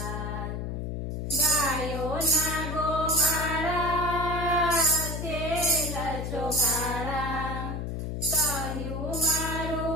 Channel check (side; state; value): left; noise; hum, 4 dB below the sound